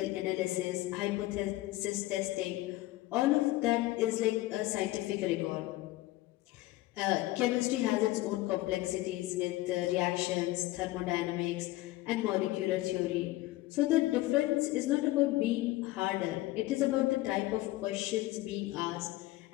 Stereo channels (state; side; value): quieter; right; 17.8 dB